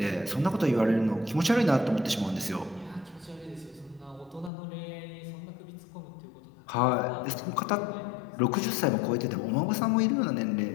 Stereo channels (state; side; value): drops out; right; at 4.5 s